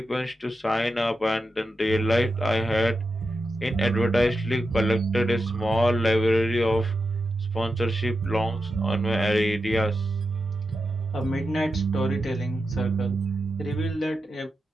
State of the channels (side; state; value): both; normal; correlation 0.89